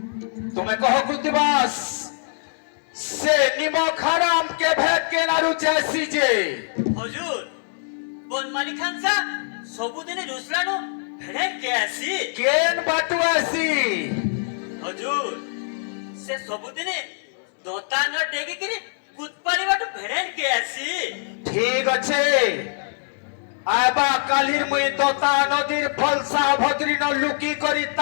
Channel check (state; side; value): silent; right; digital silence